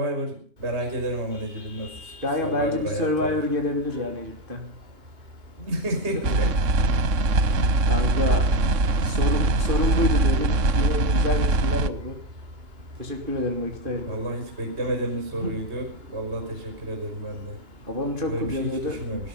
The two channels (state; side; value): late; left; 2.9 ms